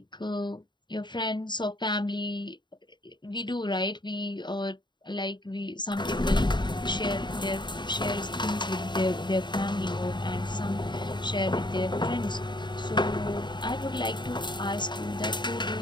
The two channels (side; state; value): right; late; 0.22 ms